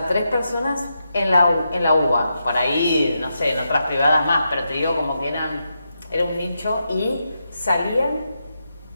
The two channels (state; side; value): inverted; both; correlation -0.85